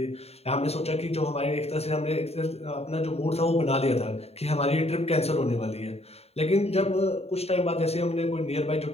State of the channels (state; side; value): late; right; 0.30 ms